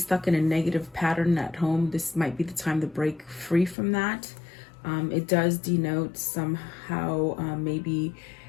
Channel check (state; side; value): drops out; right; at 3.8 s